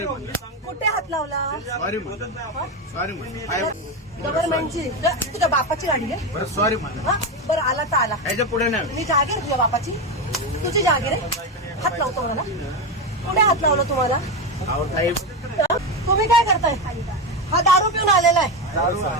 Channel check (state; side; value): normal; both; correlation 0.14